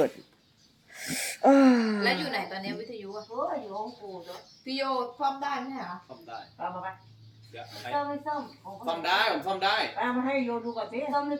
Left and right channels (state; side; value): identical; both; correlation 1.00